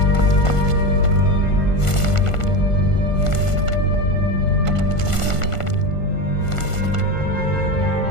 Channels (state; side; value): late; right; 1.5 ms